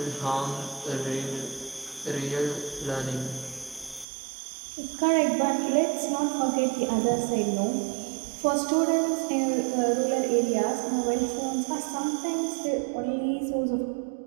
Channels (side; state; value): left; drops out; at 4.0 s